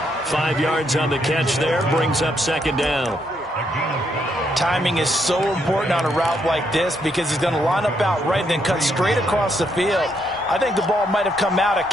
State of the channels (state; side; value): normal; both; correlation 0.75